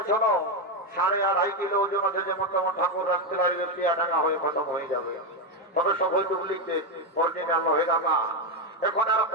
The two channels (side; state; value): both; normal; correlation 0.08